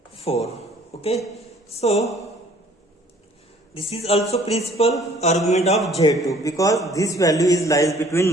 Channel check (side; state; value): both; normal; correlation 0.56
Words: 4. Okay, so this is also principal argument of Z2, because this value is lies between